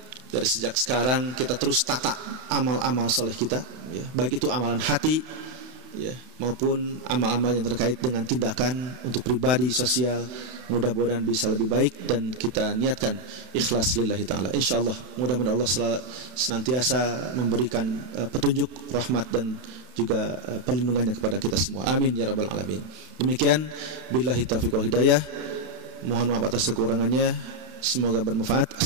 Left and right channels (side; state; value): left; late; 31 ms